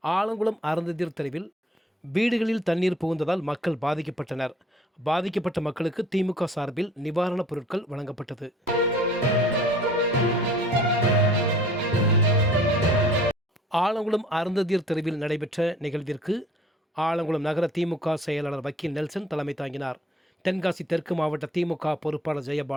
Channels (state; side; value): normal; both; correlation 0.53